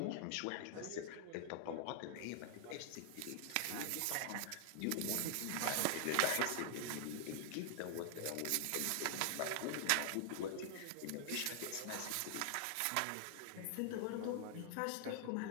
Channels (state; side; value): different; both; correlation 0.00